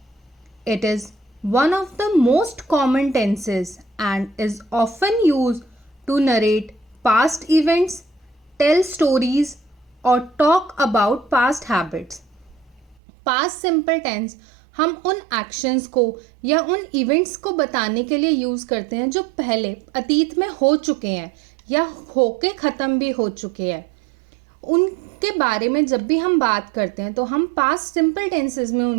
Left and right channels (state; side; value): drops out; left; at 13.0 s